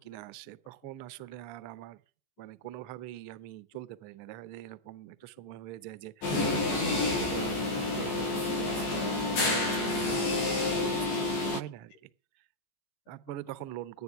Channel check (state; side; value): late; right; 14 ms